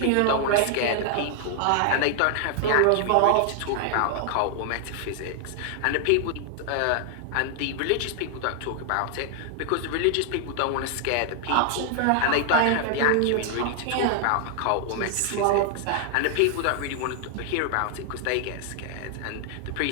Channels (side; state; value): both; different; correlation 0.00